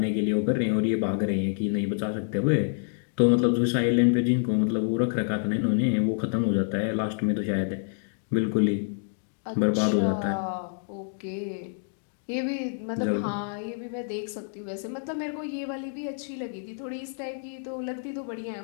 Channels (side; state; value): right; silent; digital silence